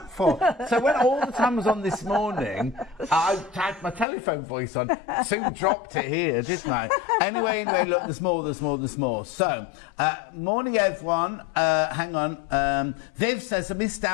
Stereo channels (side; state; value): right; drops out; at 4.0 s